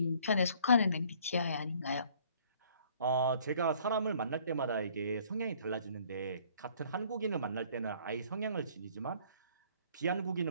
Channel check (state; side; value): inverted; both; correlation -0.58